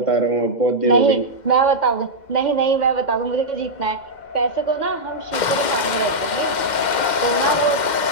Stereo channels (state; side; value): late; right; 2.1 ms